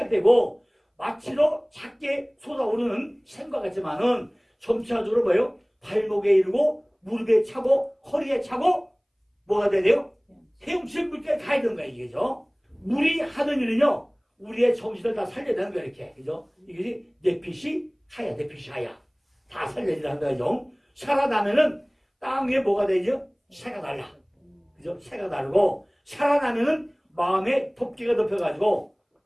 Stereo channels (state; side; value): identical; both; correlation 1.00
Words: 마치로 작게 솟아오르는 샘과 같지만은 점차적으로 뭐예요? 발목에 이르고 무릎에 차고 허리에 차고 뭐가 돼요? 헤엄칠 물까지 가야 되는 거야 이게죠. 물이 하는 일은요 우리의 정신을 다 살려야 되는 거야 이렇게. 그죠? 이것이 내핏이 하야 내핏이 하야 다 살려야 되는 거죠. 살아나면은 땅 위에 뭐가 되죠? 새가 날라. 그죠? 새가 나르고 살아나면은 마음에 덮개가 덮여가지고